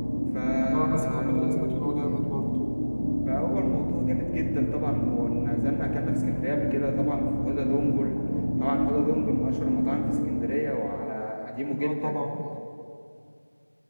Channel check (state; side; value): inverted; both; correlation -1.00